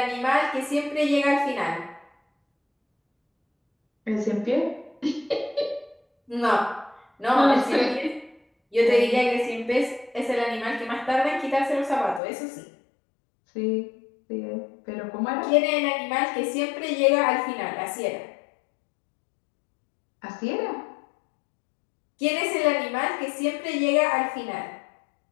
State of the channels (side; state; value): right; drops out; at 12.2 s